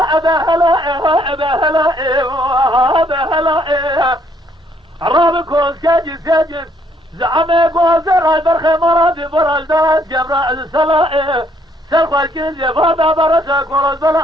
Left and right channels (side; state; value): both; normal; correlation 0.68